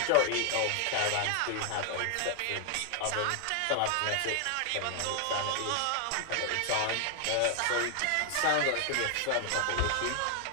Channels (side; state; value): both; different; correlation 0.00